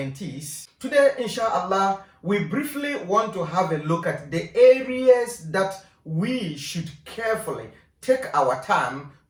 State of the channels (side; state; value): both; identical; correlation 1.00